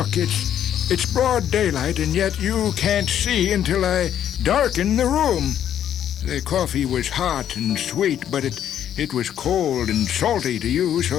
it's broad daylight, and yet you can't see until I darken the room. The coffee was hot and sweet, but it was cold and salty to you,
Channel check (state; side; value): quieter; right; 10.2 dB